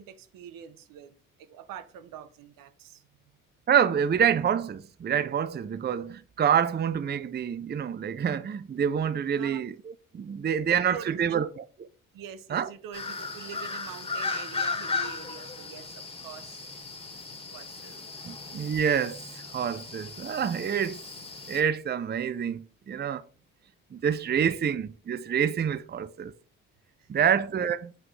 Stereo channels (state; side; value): quieter; left; 6.6 dB